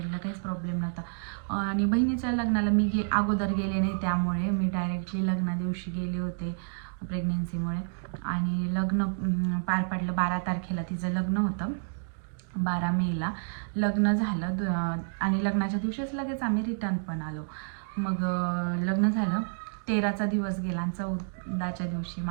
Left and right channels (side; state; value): left; silent; digital silence